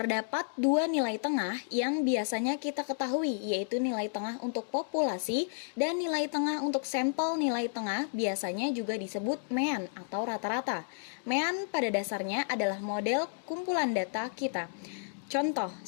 dua nilai tengah yang biasanya kita ketahui, yaitu nilai tengah untuk populasi dan nilai tengah untuk sampel. Nilai tengah biasanya juga disebut mean atau rata-rata. Mean pada dasarnya adalah model kumpulan data kita. Contoh,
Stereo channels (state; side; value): silent; right; digital silence